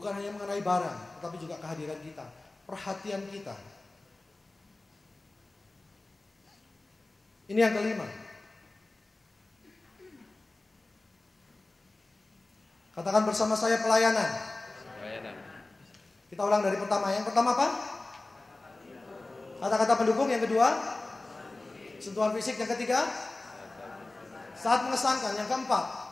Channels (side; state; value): right; quieter; 3.0 dB